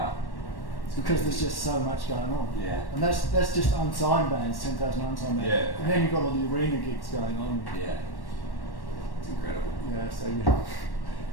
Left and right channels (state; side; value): late; right; 1.1 ms